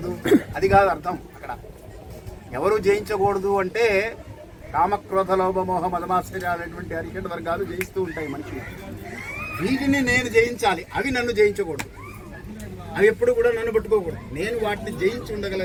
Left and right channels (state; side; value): identical; both; correlation 1.00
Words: అది కాదు అర్థం. అక్కడ ఎవరు జయించకూడదు అంటే కామక్రోధ లోభ మోహ మదమాశ్చర్యాలనేటువంటి అరిషడ్ వర్గాలు జయిస్తూ ఉంటాయి మనిషిని. వీటిని నేను జయించాలి, అవి నన్ను జయించకూడదు. అవి ఎప్పుడు కూడా నన్ను పట్టుకోకూడదు. నేను వాటిని జయించి